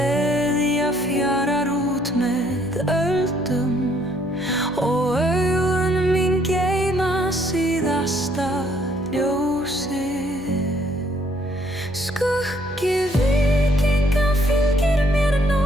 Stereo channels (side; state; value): left; noise; hum, 20 dB below the sound